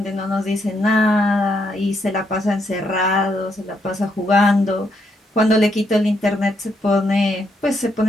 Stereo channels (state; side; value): normal; both; correlation 0.76